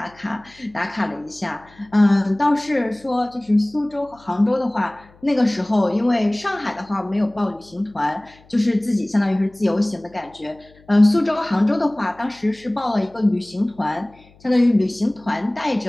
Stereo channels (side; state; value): left; noise; hum, 28 dB below the sound